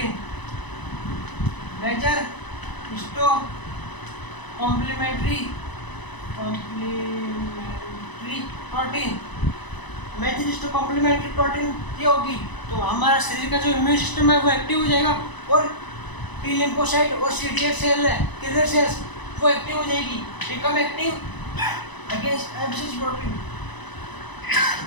major histo complementary protein. Major histo complementary protein ये होगी तो हमारा शरीर का जो इम्यून सिस्टम है वो एक्टिव हो जाएगा और टी लिम्फोसाइट और CD8 सेल है किलर सेल्स वो एक्टिव हो जाएगी, become active against MCS protein.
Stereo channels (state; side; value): late; right; 1.0 ms